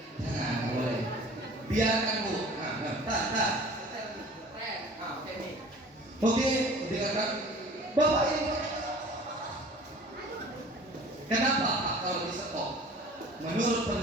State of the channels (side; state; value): both; normal; correlation 0.45